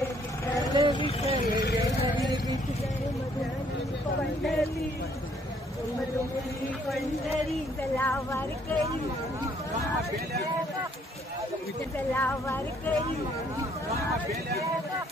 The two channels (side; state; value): both; normal; correlation 0.65